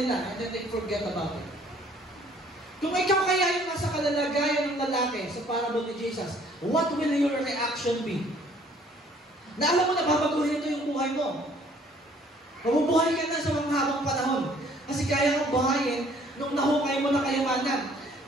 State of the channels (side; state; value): both; normal; correlation 0.59